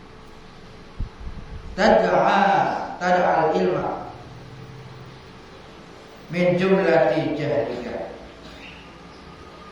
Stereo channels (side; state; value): both; identical; correlation 1.00